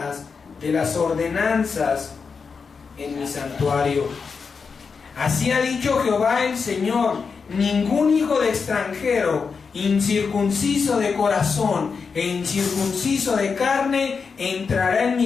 de las ordenanzas en mi santuario. Así ha dicho Jehová el Señor, ningún hijo de extranjero, incircunciso de corazón e incircunciso de carne, entrará en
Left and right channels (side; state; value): right; quieter; 5.4 dB